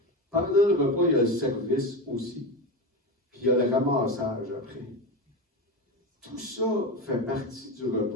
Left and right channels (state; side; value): normal; both; correlation 0.20